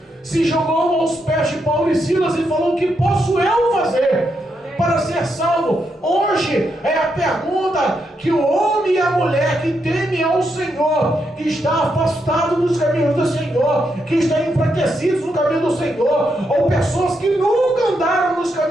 se jogou aos pés de Paulo e Silas e falou: o que posso eu fazer para ser salvo? Hoje é a pergunta que o homem e a mulher que temem ao Senhor, que está afastado dos caminhos do Senhor, que está enfraquecidos no caminho do Senhor, ou pessoas que nunca andaram nos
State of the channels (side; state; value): both; normal; correlation 0.81